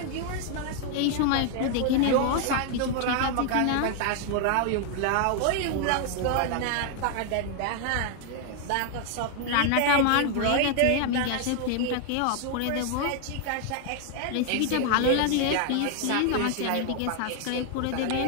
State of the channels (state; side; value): different; both; correlation 0.00